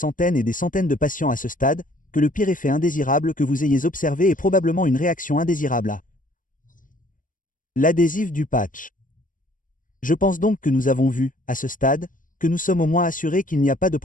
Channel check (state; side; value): late; right; 0.39 ms